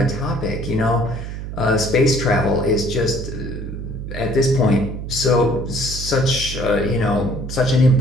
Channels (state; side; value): noise; right; hum, 7 dB below the sound